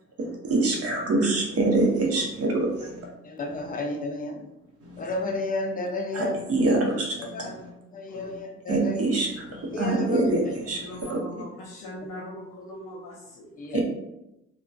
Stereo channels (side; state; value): both; normal; correlation 0.38